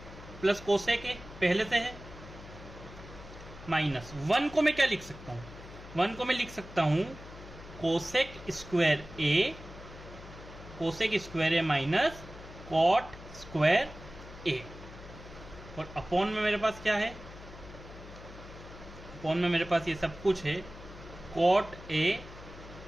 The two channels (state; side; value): noise; left; hum, 16 dB below the sound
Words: plus cosec A पहले से है, माइनस 1 को मैं क्या लिख सकता हूं? 1 को मैं लिख सकता हूं cosec square A minus cot square A। और अपॉन में मेरे पास क्या है? अपॉन में मेरे पास ये सब कुछ है, cot A